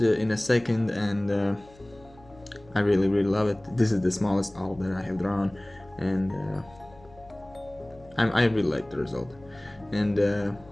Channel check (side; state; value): left; noise; hum, 25 dB below the sound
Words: a second, and I really love it. This is the smallest owl that I have drawn, and I really like the result, and